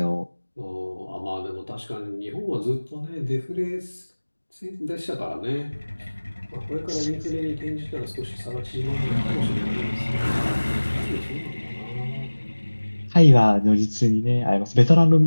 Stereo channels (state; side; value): inverted; both; correlation -1.00